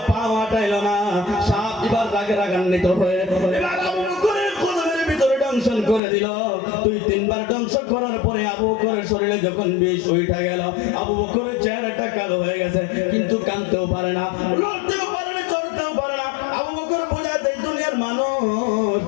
পা হাঁটাইলো না, সাপ এবার রাগান্বিত হয়ে এবার আবু বকরের কদমের ভিতরে দংশন করে দিল। 2-3 বার দংশন করার পরে আবু বকরের শরীরে যখন বিষ উঠে গেল, আবু বকরের চেহারাটা কালো হয়ে গেছে, কিন্তু কাঁদতেও পারে না, লড়তেও পারে না, চড়তেও পারে না। আবু বকর বোঝাতে দুনিয়ার মানুষ,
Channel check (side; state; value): right; drops out; at 6.0 s